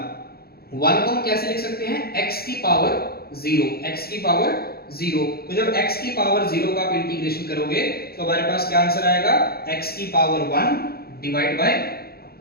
1 को हम कैसे लिख सकते हैं, x की पावर 0। तो जब x की पावर 0 का आप इंटीग्रेशन करोगे तो हमारे पास क्या आंसर आएगा, x की पावर 1 डिवाइड बाय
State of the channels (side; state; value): right; late; 0.45 ms